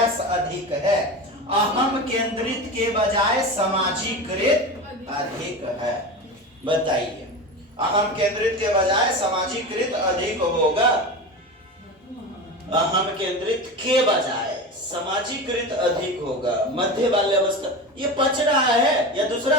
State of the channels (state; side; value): normal; both; correlation 0.26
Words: अधिक है, अहम केंद्रित के बजाय समाजीकृत अधिक है। बताइए, अहम केंद्रित के बजाय समाजीकृत अधिक होगा, अहम केंद्रित के बजाय समाजीकृत अधिक होगा। मध्य बाल्यावस्था ये पच रहा है या दूसरा